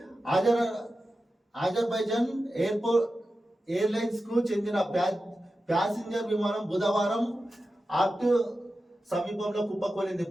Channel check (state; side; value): normal; both; correlation 0.92